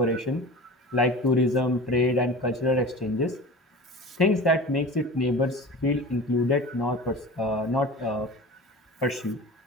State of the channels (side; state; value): both; normal; correlation 0.35